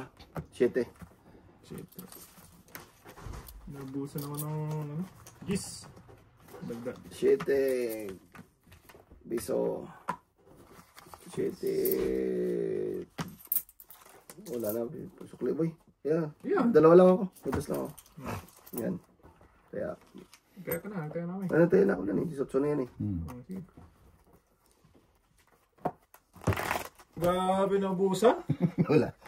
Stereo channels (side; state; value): both; identical; correlation 1.00